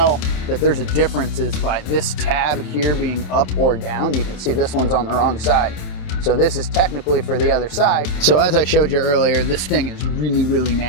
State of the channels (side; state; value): right; late; 27 ms